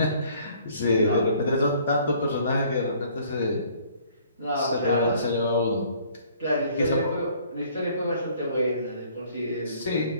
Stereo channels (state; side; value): inverted; both; correlation -0.58